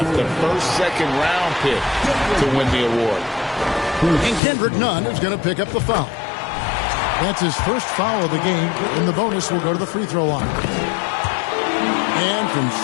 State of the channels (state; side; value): drops out; right; at 4.4 s